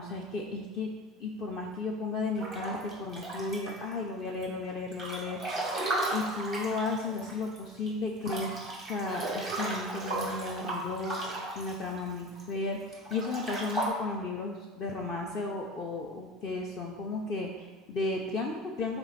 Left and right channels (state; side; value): normal; both; correlation 0.34